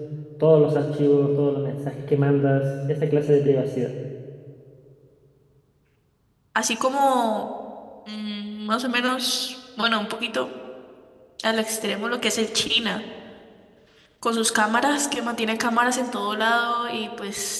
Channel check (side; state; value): both; identical; correlation 1.00